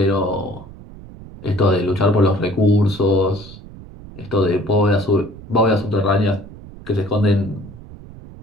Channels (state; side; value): noise; right; rumble, 17 dB below the sound